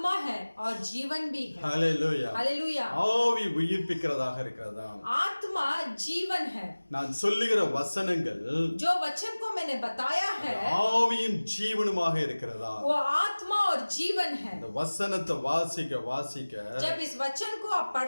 है और जीवन भी है। ஹalleluya. हालेलुया। ஆவி உயிர்ப்பிக்கிறதாக இருக்கிறதா. आत्मा जीवन है। நான் சொல்லுகிற வசனங்கள் जो वचन को मैंने बताया है ஆவியும் ஜீவனுமாக இருக்கிறதா. वो आत्मा और जीवन है। இந்த வசனத்தை வாசிக்க வாசிக்க जब इस वचन को आप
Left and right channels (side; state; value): both; inverted; correlation -1.00